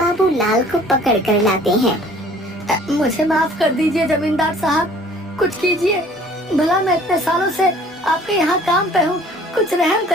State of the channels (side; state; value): both; normal; correlation 0.52